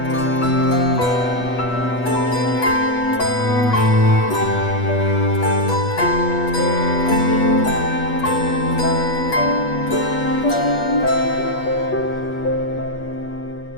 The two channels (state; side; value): late; right; 8.2 ms